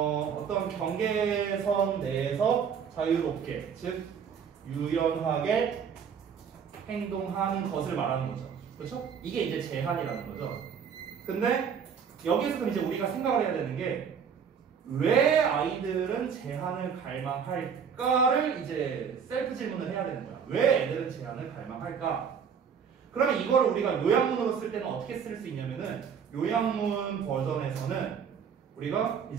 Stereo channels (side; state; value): left; quieter; 7.1 dB